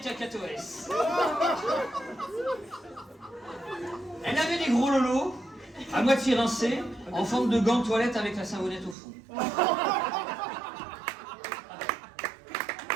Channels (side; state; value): left; drops out; at 9.0 s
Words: cacatoès. Elle avait des gros lolos, à moitié rincés, en forme de gants de toilette avec la savonnette au fond.